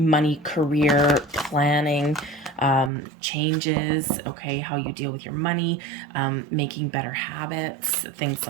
career planning, changes, okay, how you deal with your money, making better habits, things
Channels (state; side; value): drops out; left; at 2.9 s